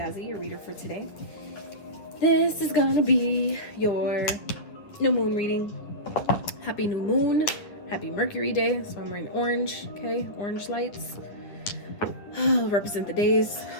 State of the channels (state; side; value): late; right; 9.5 ms